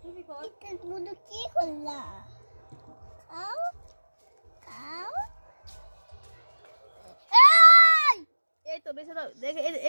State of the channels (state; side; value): inverted; both; correlation -1.00